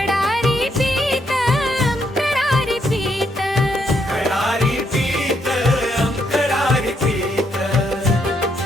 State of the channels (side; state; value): both; normal; correlation 0.76